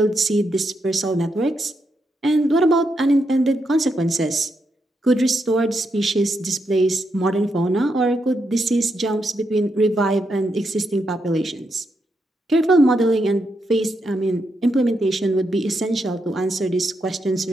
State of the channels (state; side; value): normal; both; correlation 0.82